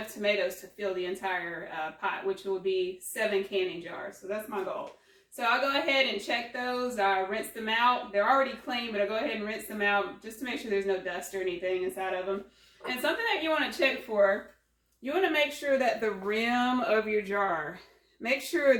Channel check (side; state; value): both; identical; correlation 1.00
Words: tomatoes to fill the entire pot, which will be 7 canning jars. So that's my goal. So I'll go ahead and check those. I rinse them out. They're already clean, but I'll go ahead and rinse them out just to make sure there's no dust or anything inside of them. And something that you want to check for, you want to make sure that the rim of your jar, make sure